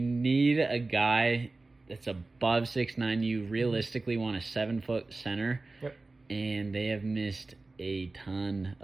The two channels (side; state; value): left; quieter; 3.3 dB